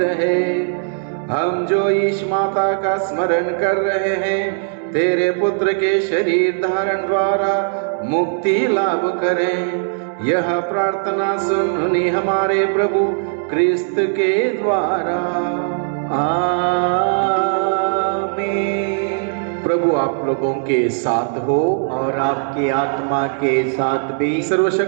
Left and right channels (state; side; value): silent; left; digital silence